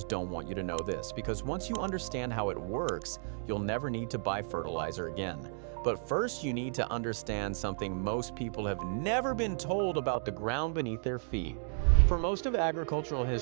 don't want you to know this, because once you understand how it works, you'll never need to buy fertilizer again. But first, you need to understand something most people have never been told about the ground beneath their feet. For most of agricultural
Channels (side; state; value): left; silent; digital silence